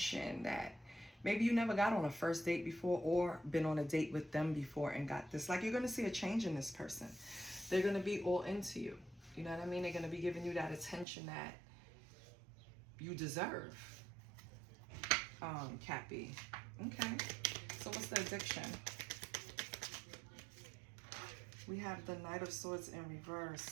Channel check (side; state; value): left; drops out; at 11.1 s